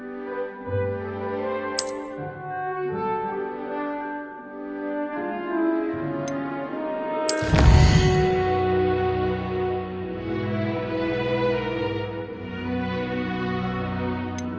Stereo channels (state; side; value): identical; both; correlation 1.00